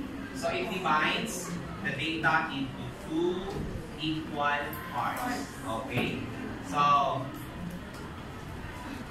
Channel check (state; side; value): identical; both; correlation 1.00